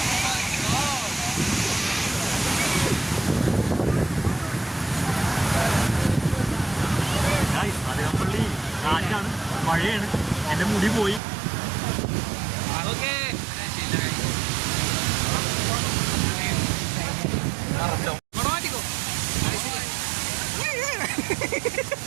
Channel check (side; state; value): left; drops out; at 11.2 s